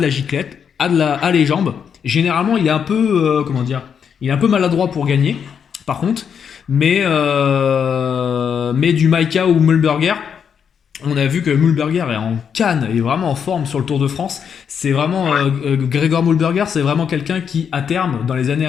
la giclette, a les jambes. Généralement, il est un peu, comment dire, il est un peu maladroit pour gagner, par contre. Mais du Maika ou Mühlberger, on a vu que Mühlberger est en canne, est vraiment en forme sur le Tour de France. C'est vraiment Gregor Mühlberger, c'est vraiment quelqu'un qui, à terme, dans les années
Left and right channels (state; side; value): quieter; right; 7.3 dB